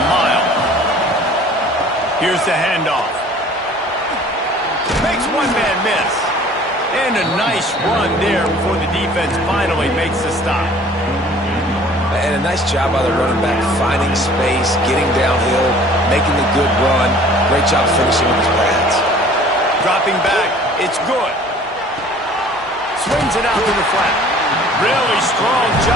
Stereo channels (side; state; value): both; normal; correlation 0.50